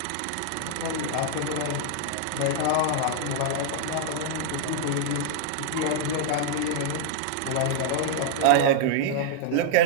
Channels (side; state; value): both; different; correlation -0.01